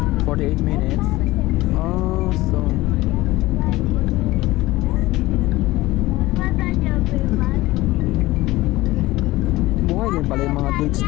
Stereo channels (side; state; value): right; quieter; 18.5 dB